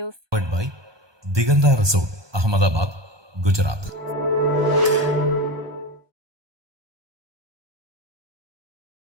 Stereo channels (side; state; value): left; late; 1.2 ms